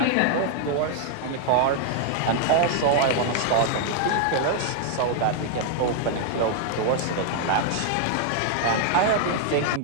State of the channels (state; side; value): different; both; correlation 0.00